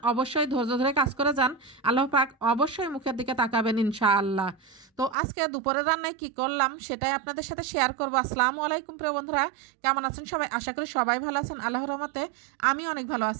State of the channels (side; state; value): left; drops out; at 5.2 s